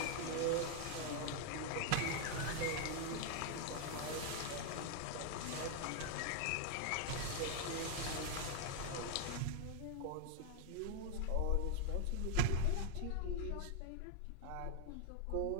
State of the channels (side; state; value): both; different; correlation 0.00